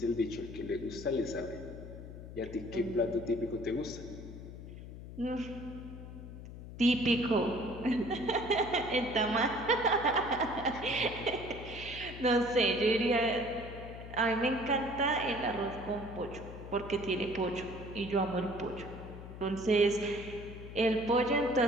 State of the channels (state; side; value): noise; left; hum, 12 dB below the sound